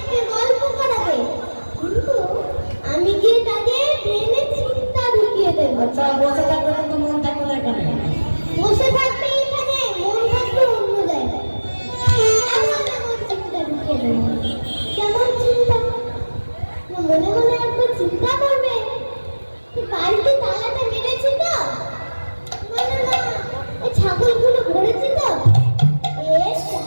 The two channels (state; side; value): inverted; both; correlation -1.00